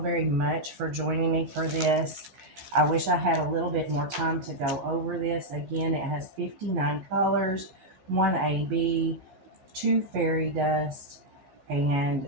much for joining me for this. I wish I had a little bit more time to go over this. Again, it has 59 colors, 1 AB, 2 fairy dust,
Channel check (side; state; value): left; late; 16 ms